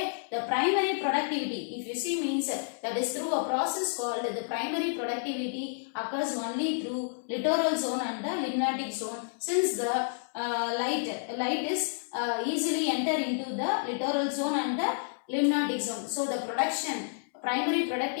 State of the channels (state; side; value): silent; right; digital silence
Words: the primary productivity, if you see, means that is through a process called the primary productivity occurs only through littoral zone and the limnatic zone, since the light is easily enter into the littoral zone and the limnatic zone. So the primary